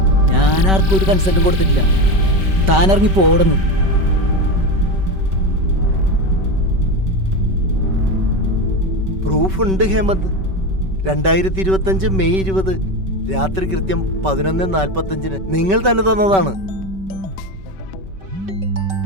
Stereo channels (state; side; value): late; left; 5.2 ms